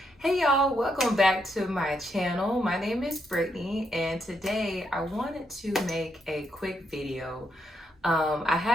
hey y'all, welcome back to my channel. My name is Brittany and today I wanted to make a quick video. I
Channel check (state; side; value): normal; both; correlation 0.79